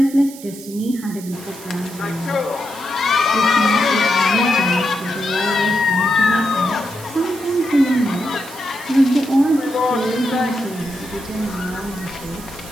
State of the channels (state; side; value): noise; right; hiss, 16 dB below the sound